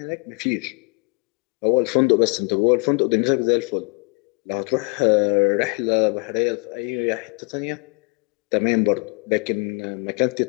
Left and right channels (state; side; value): quieter; right; 34.8 dB